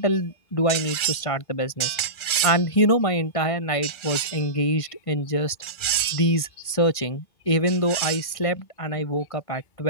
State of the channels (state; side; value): late; right; 1.4 ms